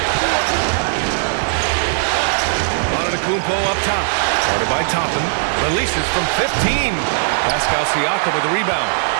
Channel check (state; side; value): silent; left; digital silence